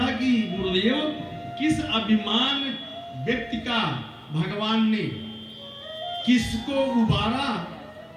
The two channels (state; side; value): identical; both; correlation 1.00